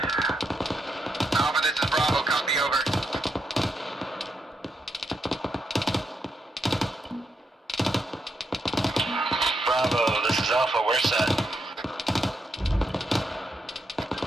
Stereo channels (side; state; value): both; normal; correlation 0.82